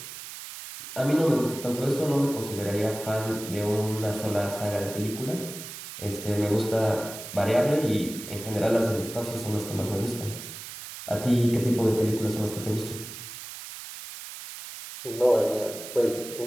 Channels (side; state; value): right; noise; hiss, 11 dB below the sound